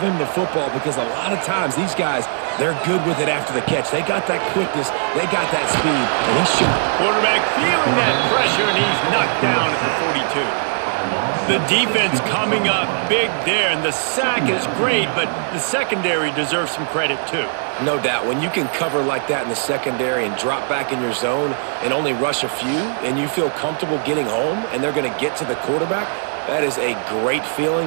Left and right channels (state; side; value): silent; left; digital silence